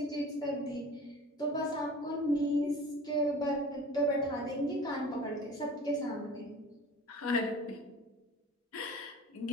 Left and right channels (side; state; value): both; normal; correlation 0.41